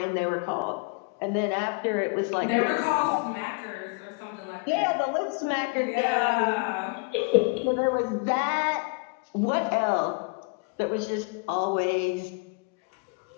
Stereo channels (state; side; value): quieter; right; 31.7 dB